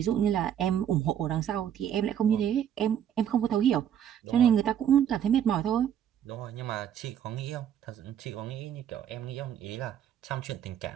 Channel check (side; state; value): left; quieter; 9.6 dB